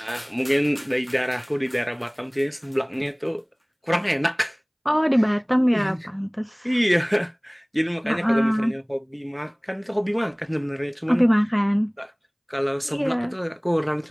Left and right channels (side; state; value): both; identical; correlation 1.00